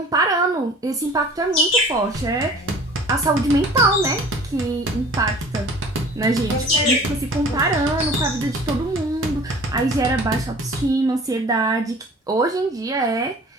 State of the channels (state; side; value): normal; both; correlation 0.46